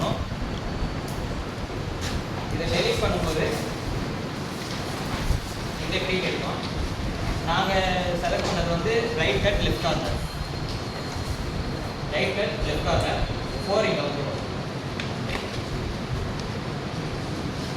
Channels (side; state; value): both; identical; correlation 1.00